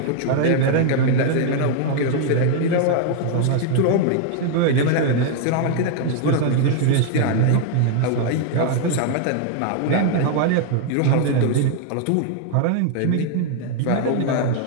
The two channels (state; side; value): different; both; correlation 0.00